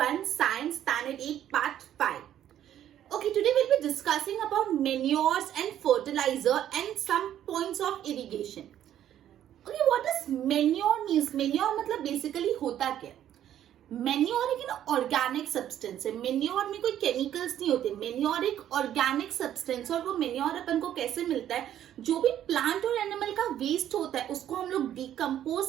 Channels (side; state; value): left; quieter; 11.1 dB